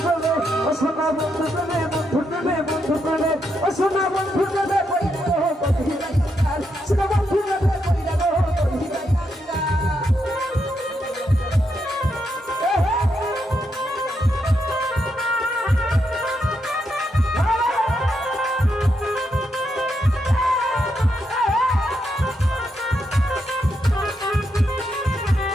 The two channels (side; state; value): both; normal; correlation 0.81